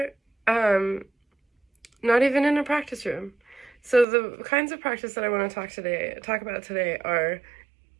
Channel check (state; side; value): drops out; left; at 4.0 s